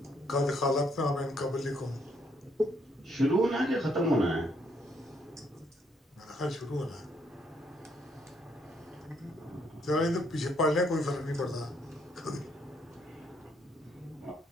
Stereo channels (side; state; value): both; normal; correlation 0.71